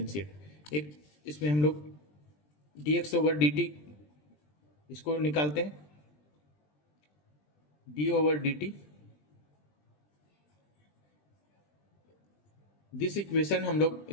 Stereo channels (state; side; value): late; right; 20 ms